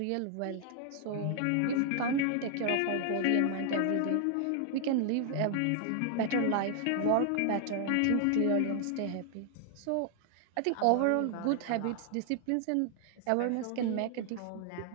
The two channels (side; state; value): both; different; correlation 0.00